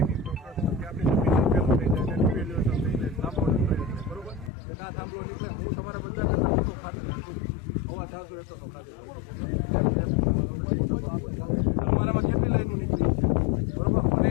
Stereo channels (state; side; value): drops out; right; at 4.5 s